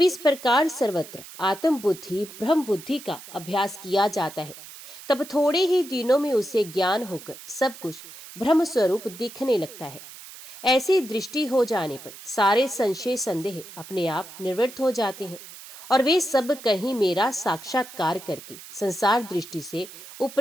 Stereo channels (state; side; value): noise; right; hiss, 16 dB below the sound